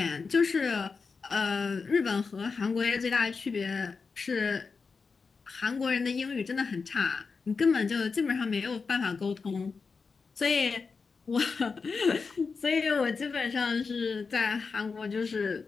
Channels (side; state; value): right; quieter; 4.8 dB